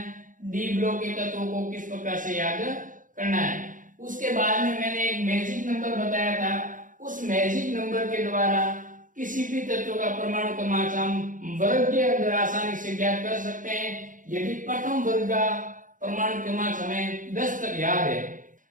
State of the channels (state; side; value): late; left; 0.38 ms